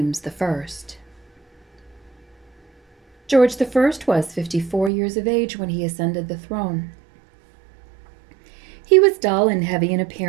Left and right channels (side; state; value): left; drops out; at 4.9 s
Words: I. George I was 54 years of age when he ascended the throne. He was dull and heavy in